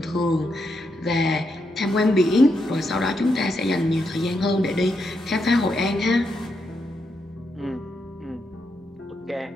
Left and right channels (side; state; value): both; normal; correlation 0.82